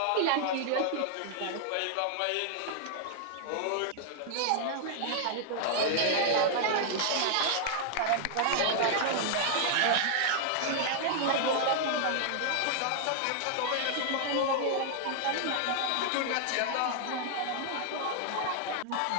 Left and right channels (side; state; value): both; different; correlation -0.01